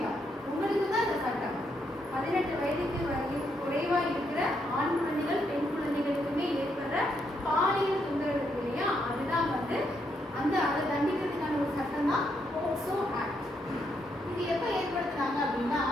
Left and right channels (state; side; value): normal; both; correlation 0.77